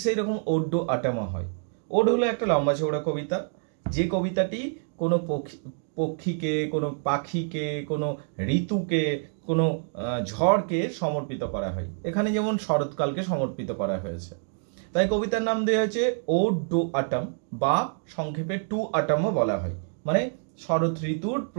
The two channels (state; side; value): silent; left; 60 dB below the other